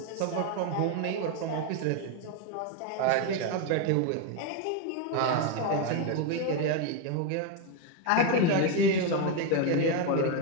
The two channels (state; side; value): different; both; correlation 0.02